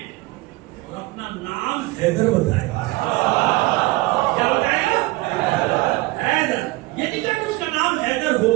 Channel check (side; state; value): left; quieter; 20.7 dB